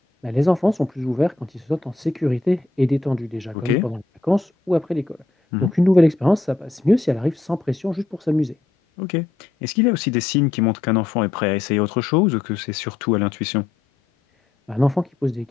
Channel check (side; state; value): right; quieter; 3.4 dB